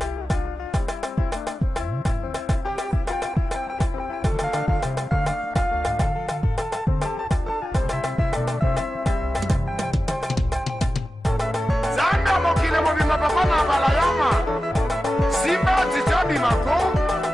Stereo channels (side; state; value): both; normal; correlation 0.94